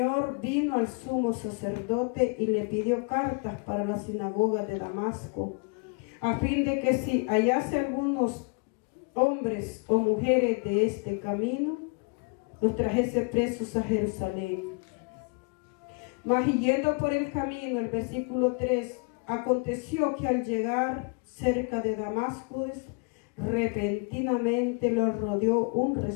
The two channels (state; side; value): quieter; right; 33.7 dB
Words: vino al sumo sacerdote y le pidió cartas para la sinagoga de Damasco, a fin de que si hallase algunos hombres o mujeres de este camino, los trajese presos a Jerusalén. Mas yendo por el camino, el versículo 3, aconteció que al llegar cerca de Damasco, repentinamente lo rodeó un